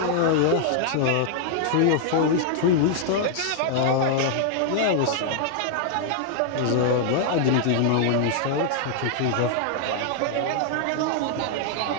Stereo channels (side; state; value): both; different; correlation -0.01